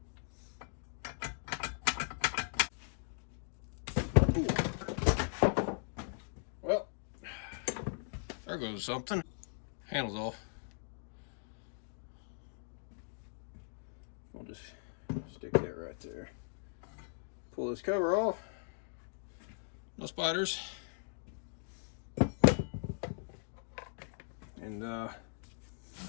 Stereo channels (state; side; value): silent; right; digital silence